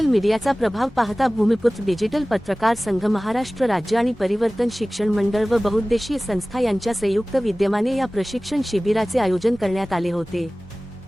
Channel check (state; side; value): normal; both; correlation 0.98